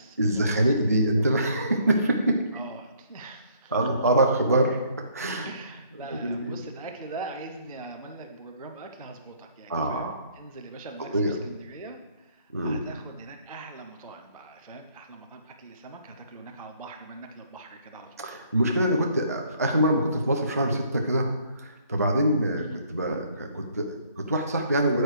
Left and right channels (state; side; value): inverted; both; correlation -0.63